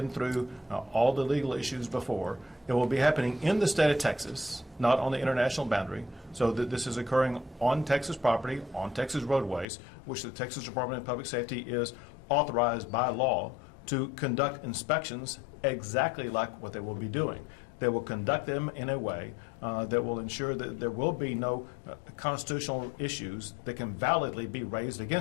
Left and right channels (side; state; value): right; drops out; at 9.7 s